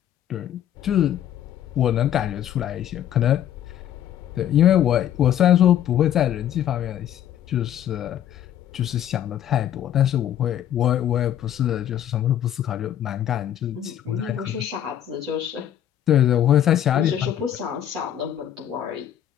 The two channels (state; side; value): quieter; right; 10.8 dB